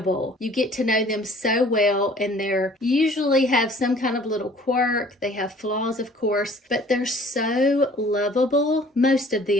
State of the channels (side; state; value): both; normal; correlation 0.52